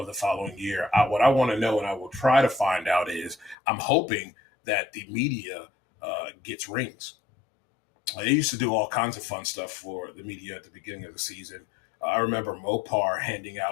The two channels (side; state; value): right; drops out; at 3.6 s